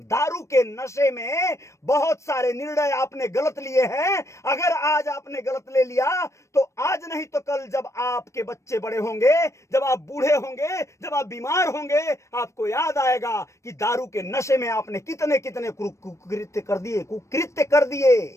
के नशे में बहुत सारे निर्णय आपने गलत लिए हैं। अगर आज आपने गलत ले लिया तो आज नहीं तो कल जब आपके बच्चे बड़े होंगे, जब आप बूढ़े होंगे, जब आप बीमार होंगे, आपको याद आएगा कि दारू के नशे में आपने कितने कितने कुकृत्य कर दिए।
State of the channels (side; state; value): right; late; 0.14 ms